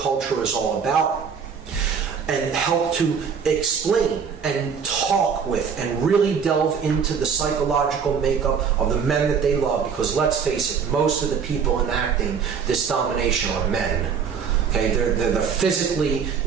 culture is all about, and help to explain and talk with and really delve into the psychological makeup of the men that they love, because let's face it, most of the people enacting this domination are men. Okay, they're the physically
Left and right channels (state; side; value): quieter; left; 6.6 dB